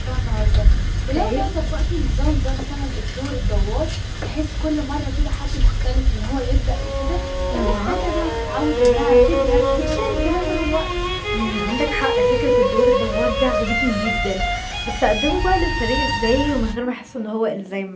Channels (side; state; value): both; identical; correlation 1.00